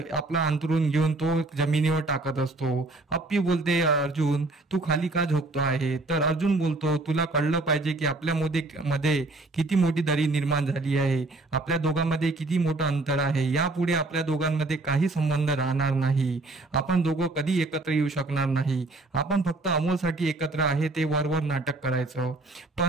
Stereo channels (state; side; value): quieter; left; 3.1 dB